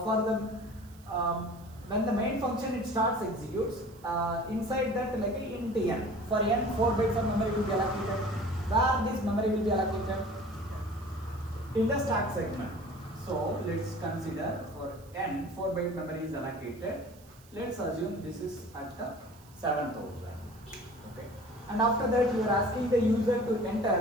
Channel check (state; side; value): noise; right; hiss, 26 dB below the sound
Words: the when the main function it starts executes, inside that like a int n, for n 4 bytes of memory will be allocated. Where this memory will be allocated? In the stack segment. So let's consider for n 4 byte memory is allocated. Let's assume this is at the 7000. Okay. And after that you are asking the user to